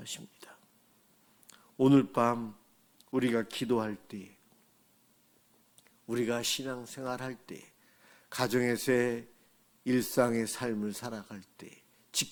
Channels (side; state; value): both; identical; correlation 1.00